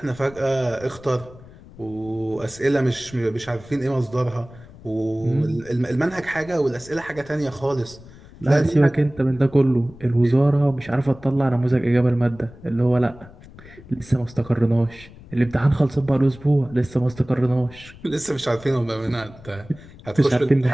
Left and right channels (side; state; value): left; noise; rumble, 20 dB below the sound